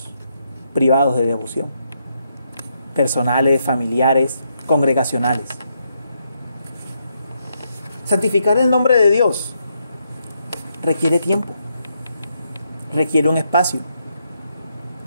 privados de devoción, personales, familiares, congregacionales. Santificar el nombre de Dios requiere tiempo, requiere un espacio.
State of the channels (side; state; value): both; inverted; correlation -0.78